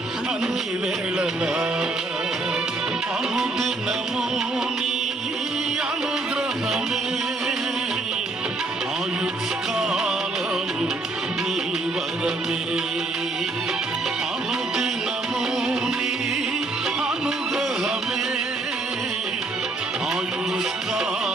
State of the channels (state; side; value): quieter; left; 3.1 dB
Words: అన్ని వేళలా. అనుదినము నీ అనుగ్రహమే, ఆయుష్కాలము నీ వరమే. అనుదినము నీ అనుగ్రహమే,